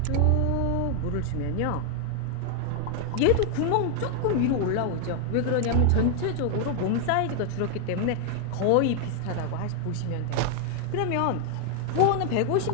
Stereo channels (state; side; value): different; both; correlation 0.00